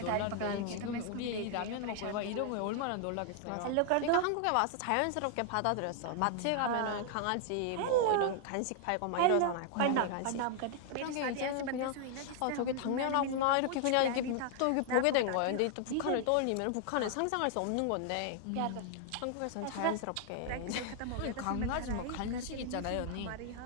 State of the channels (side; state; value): both; different; correlation 0.00